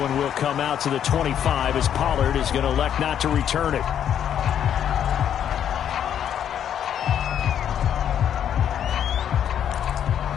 will come out to the 25 as Pollard is going to elect not to return it.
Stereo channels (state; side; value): quieter; right; 9.4 dB